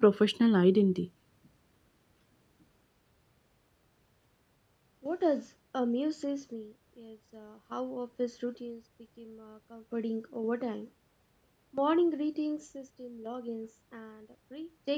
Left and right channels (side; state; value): both; identical; correlation 1.00